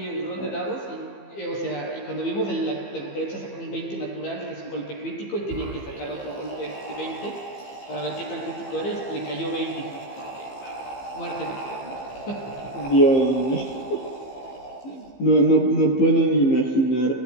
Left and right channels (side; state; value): right; late; 15 ms